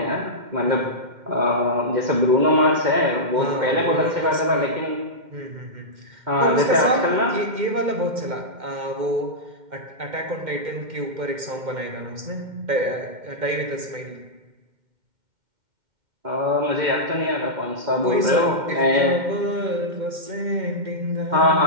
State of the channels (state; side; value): late; left; 2.1 ms